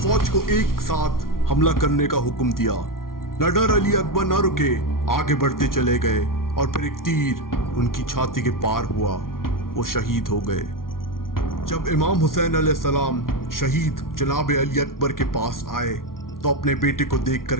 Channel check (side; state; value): right; late; 0.92 ms